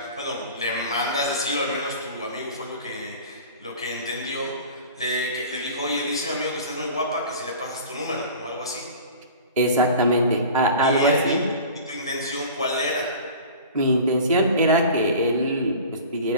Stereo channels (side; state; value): both; inverted; correlation -0.40